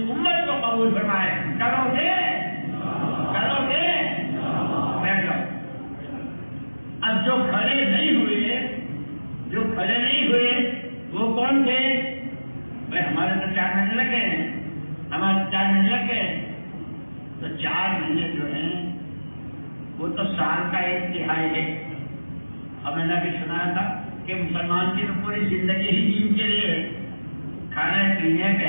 امت کو قبول فرمائے۔ کرو گے؟ کرو گے؟ بیٹھ جاؤ۔ اب جو کھڑے نہیں ہوئے وہ کون تھے؟ بھائی ہمارے تو 4 مہینے لگے ہیں، ہمارے 4 مہینے لگ گئے، تو 4 مہینے جو ہیں وہ تو سال کا 1/3 ہے۔ اب میں نے بھی سنا تھا کہ مسلمان کی تو پوری زندگی ہی دین کے لیے کھانے پینے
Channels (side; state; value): both; inverted; correlation -1.00